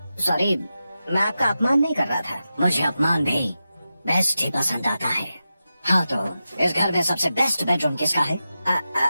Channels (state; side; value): inverted; both; correlation -0.91